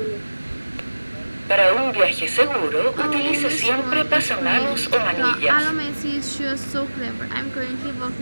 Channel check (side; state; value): both; inverted; correlation -1.00